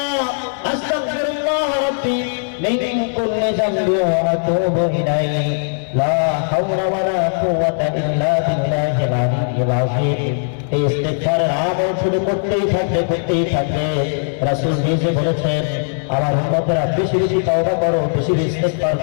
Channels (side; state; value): right; silent; 67 dB below the other